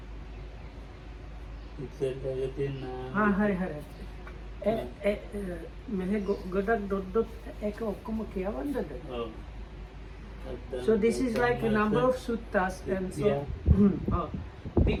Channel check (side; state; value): both; identical; correlation 1.00